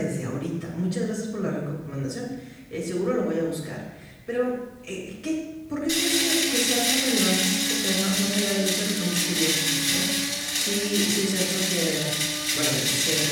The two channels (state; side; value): identical; both; correlation 1.00